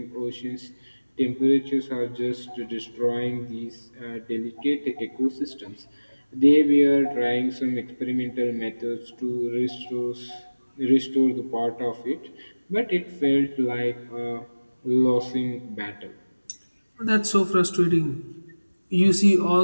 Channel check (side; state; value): both; inverted; correlation -1.00